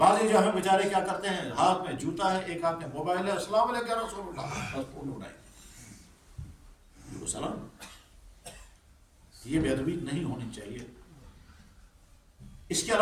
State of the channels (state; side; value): identical; both; correlation 1.00